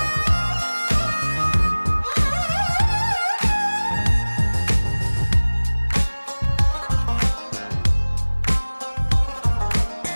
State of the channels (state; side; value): inverted; both; correlation -1.00